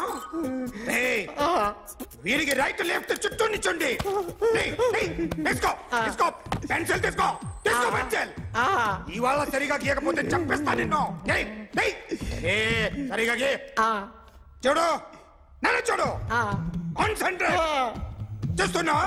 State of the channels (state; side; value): identical; both; correlation 1.00